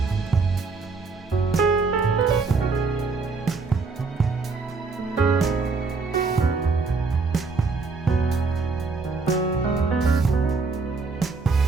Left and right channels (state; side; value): quieter; left; 4.3 dB